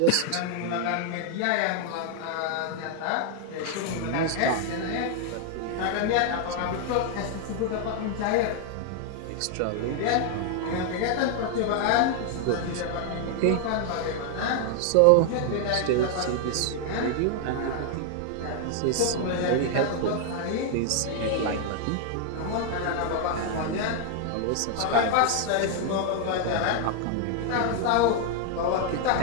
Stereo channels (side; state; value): both; different; correlation 0.00